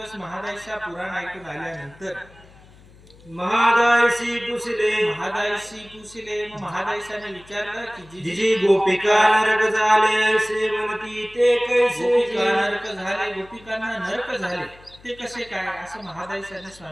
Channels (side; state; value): left; noise; hum, 24 dB below the sound